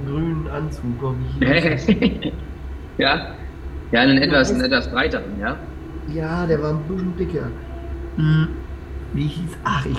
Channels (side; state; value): both; identical; correlation 1.00